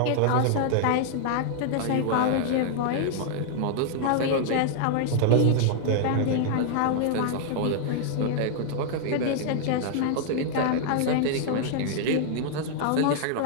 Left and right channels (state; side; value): different; both; correlation -0.01